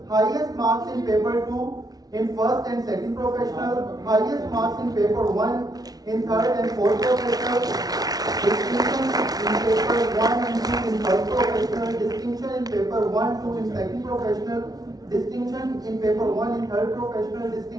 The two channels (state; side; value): late; left; 0.19 ms